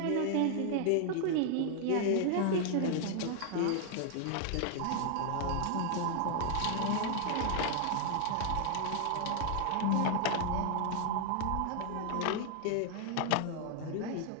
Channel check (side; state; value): both; different; correlation 0.00